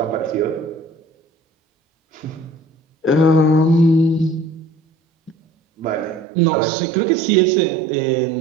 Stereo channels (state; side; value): drops out; left; at 6.2 s